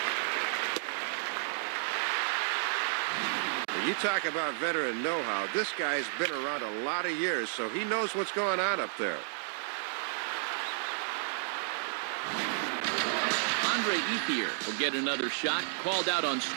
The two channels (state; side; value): silent; left; digital silence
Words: You talk about veteran know-how. This guy's been around a lot of years, so he knows what's going on up there. Andre Ethier will get another shot, called out on